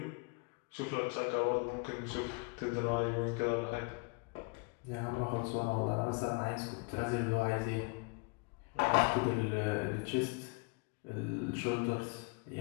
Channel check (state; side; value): quieter; right; 32.4 dB